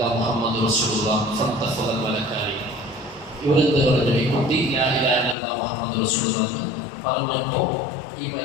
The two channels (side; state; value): right; drops out; at 5.4 s